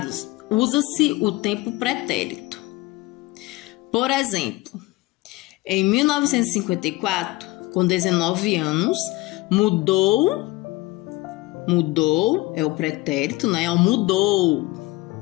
usa-se o tempo pretérito. Por exemplo, em 1954, com 19 anos, mudou é o pretérito, né? Mudou,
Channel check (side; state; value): right; quieter; 20.0 dB